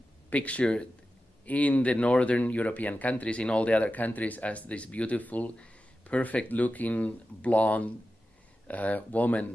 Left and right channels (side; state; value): both; normal; correlation 0.92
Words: pictured in the northern European countries, in all the other countries, as this beautiful, perfect-looking, blonde woman